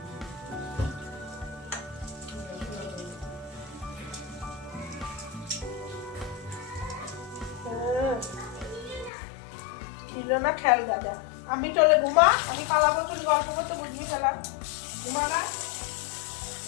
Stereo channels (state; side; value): drops out; right; at 9.1 s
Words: না খেয়াল দাদা, আমি চলে ঘুমা, আমি পালাবো, তুমি গল্প করতে বুঝবি ফেলা। ঘুমা না,